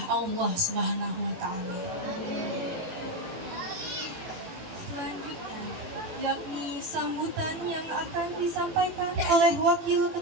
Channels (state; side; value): late; left; 18 ms